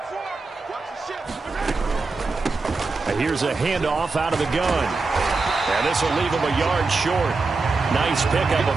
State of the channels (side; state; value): left; quieter; 3.9 dB